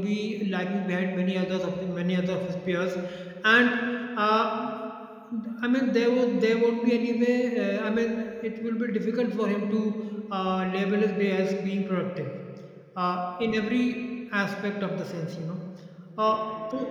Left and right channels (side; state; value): both; identical; correlation 1.00